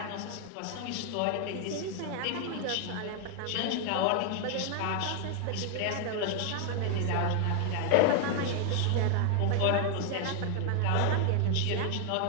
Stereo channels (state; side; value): different; both; correlation 0.00